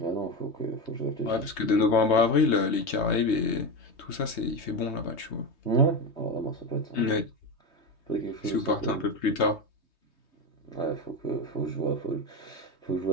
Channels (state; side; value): late; right; 3.2 ms